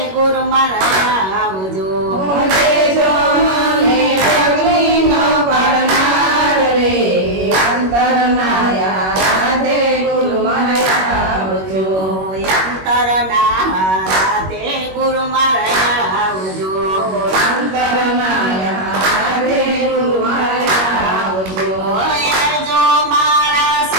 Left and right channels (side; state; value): left; late; 21 ms